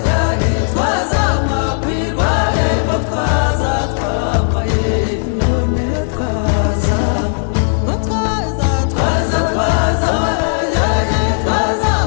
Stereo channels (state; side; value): silent; right; 63 dB below the other